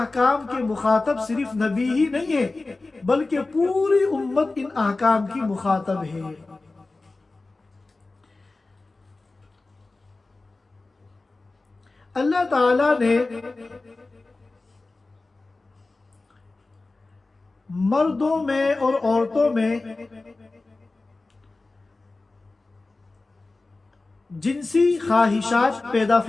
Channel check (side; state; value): right; quieter; 3.3 dB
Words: کے مخاطب صرف نبی ہی نہیں ہے بلکہ پوری امت ان احکام کی مخاطب ہے۔ اللہ تعالیٰ نے مردوں میں اور عورتوں میں جنسی خواہشات پیدا